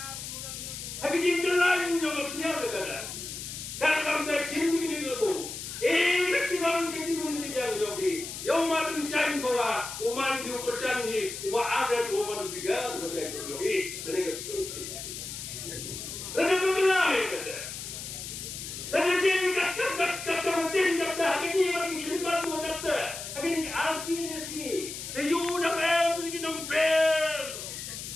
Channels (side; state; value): left; noise; hiss, 8 dB below the sound